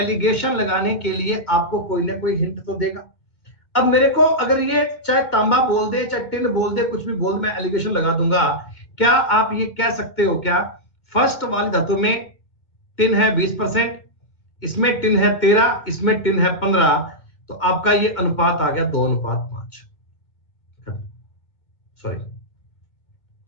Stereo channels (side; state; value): right; late; 2.0 ms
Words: लगाने के लिए आपको कोई ना कोई हिंट तो देगा। अब मेरे को अगर ये चाहे तांबा बोल दे, चाहे टिन बोल दे, कुछ भी बोल दे, मैं एलिगेशन लगा दूंगा। क्या आप ये कह सकते हो क्या, फर्स्ट वाली धातु में टिन है 20%, इसमें टिन है 13, इसमें टिन है 15, तो आपका ये अनुपात आ गया 2:5। सॉरी,